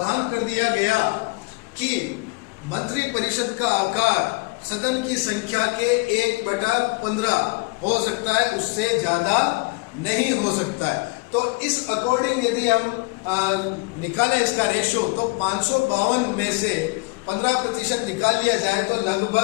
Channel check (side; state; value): right; quieter; 27.8 dB